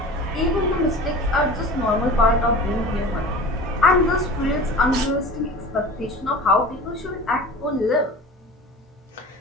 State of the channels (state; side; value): normal; both; correlation 0.36